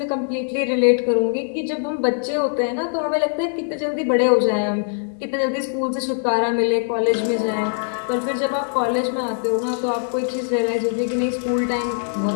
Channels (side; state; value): right; silent; 60 dB below the other